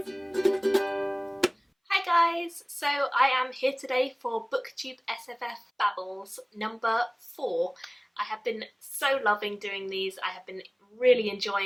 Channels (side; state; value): both; identical; correlation 1.00